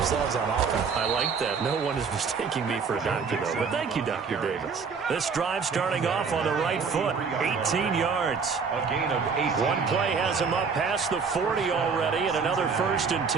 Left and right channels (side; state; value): left; quieter; 5.5 dB